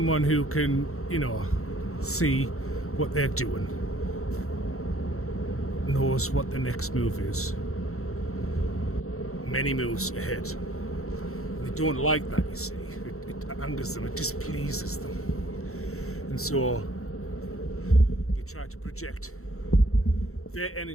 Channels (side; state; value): right; late; 0.63 ms